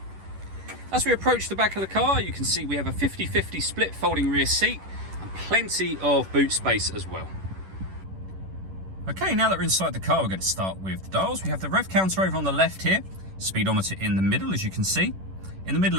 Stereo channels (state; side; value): late; left; 11 ms